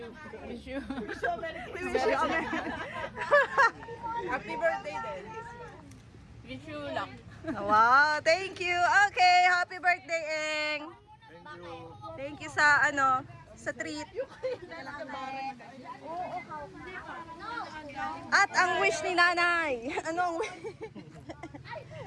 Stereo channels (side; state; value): both; identical; correlation 1.00